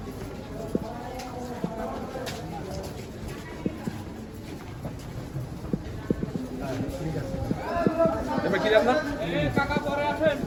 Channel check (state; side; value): identical; both; correlation 1.00